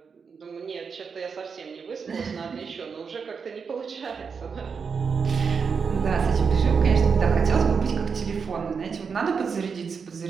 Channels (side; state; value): left; quieter; 5.8 dB